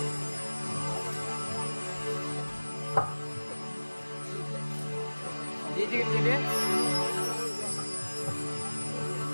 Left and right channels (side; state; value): both; inverted; correlation -1.00